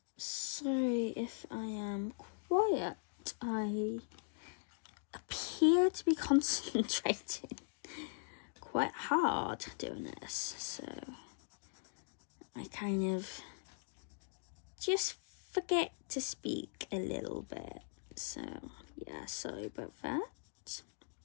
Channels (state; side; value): silent; right; digital silence